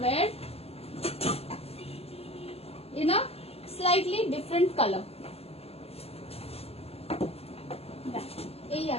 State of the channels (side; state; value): right; late; 0.29 ms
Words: wire in a slightly different color। এই